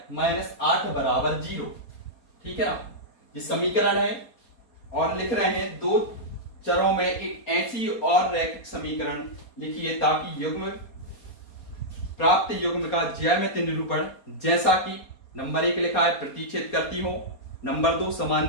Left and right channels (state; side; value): late; right; 4.2 ms